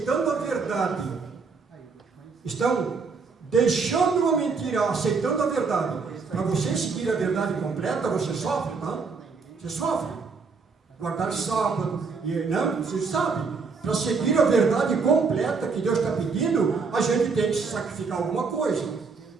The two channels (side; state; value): left; quieter; 4.8 dB